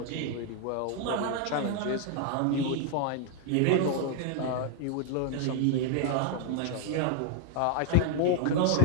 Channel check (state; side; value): different; both; correlation 0.00